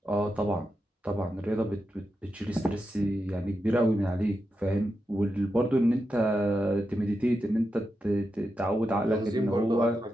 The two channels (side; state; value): both; normal; correlation 0.88